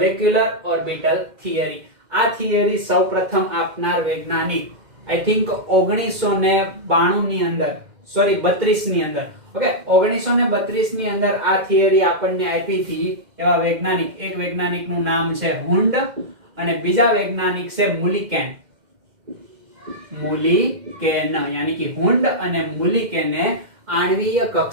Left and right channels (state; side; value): late; left; 2.1 ms